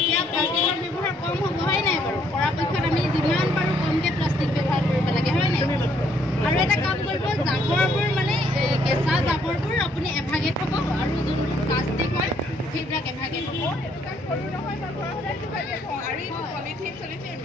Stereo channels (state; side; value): normal; both; correlation 0.68